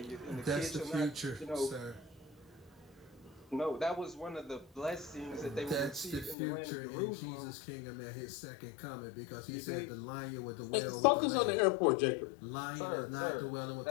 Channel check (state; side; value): drops out; right; at 6.4 s